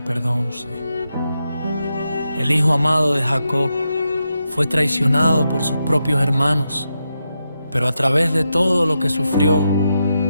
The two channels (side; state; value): both; inverted; correlation -0.86